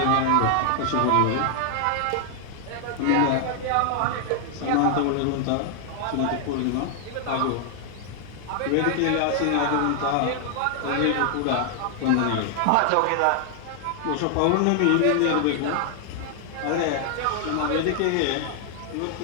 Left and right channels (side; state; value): both; different; correlation 0.00